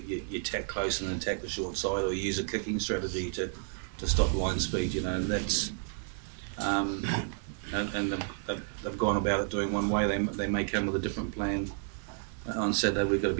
tack close and then attack the short side, or you use a kicking strategy to stop line speed. And that's and they've gone about it doing one way. They may come with a different plan on Saturday. We've got to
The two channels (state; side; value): silent; left; digital silence